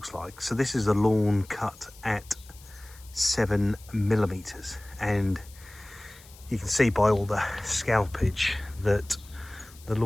like. So this is a lawn cut at 7mm, and you can see by all the scalpage that the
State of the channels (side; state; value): left; noise; hiss, 22 dB below the sound